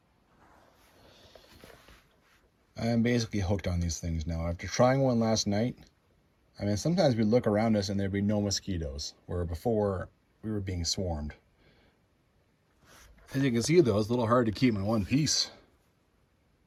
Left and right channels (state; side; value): identical; both; correlation 1.00